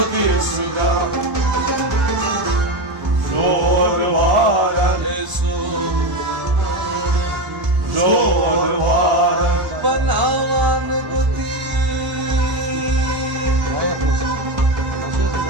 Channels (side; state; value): left; late; 1.0 ms